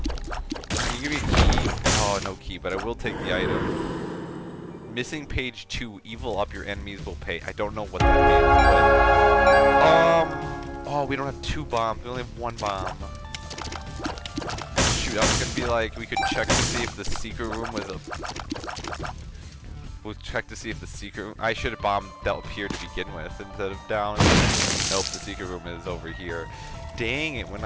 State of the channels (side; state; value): both; identical; correlation 1.00